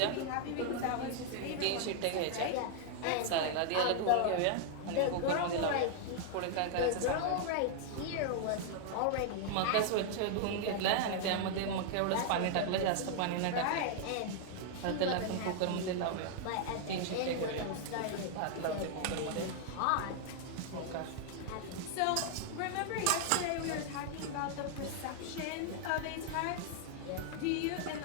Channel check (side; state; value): both; different; correlation 0.00